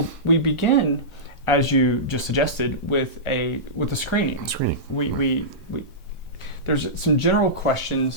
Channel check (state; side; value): normal; both; correlation -0.17